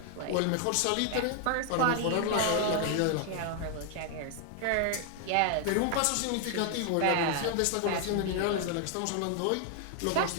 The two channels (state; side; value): different; both; correlation 0.00